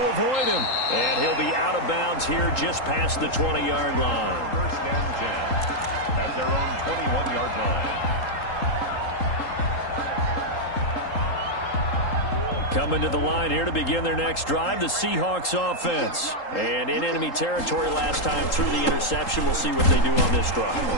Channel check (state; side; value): late; right; 3.8 ms